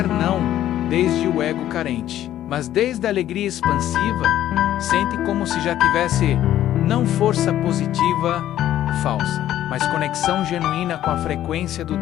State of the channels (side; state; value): right; quieter; 12.3 dB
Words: não desde o ego carente, mas desde a alegria expansiva, sente como se já tivesse não força positiva falsa, mas conexão genuína com a frequência do